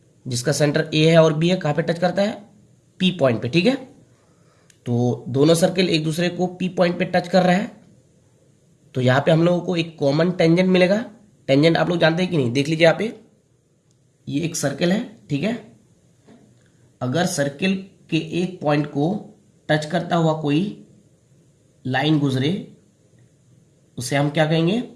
जिसका सेंटर ए है और बी है, कहां पे टच करता है, पी पॉइंट पे, ठीक है। तो दोनों सर्कल एक दूसरे को पी पॉइंट पे टच कर रहा है। तो यहाँ पे हम लोगों को एक कॉमन टेंजेंट मिलेगा। टेंजेंट आप लोग जानते हैं कि नहीं, देख लीजिए यहाँ पे, ये एक सर्कल है, ठीक है। अगर सर्कल के एक पॉइंट को टच करता हुआ कोई लाइन गुजरे, उसे हम क्या कहेंगे,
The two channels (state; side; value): identical; both; correlation 1.00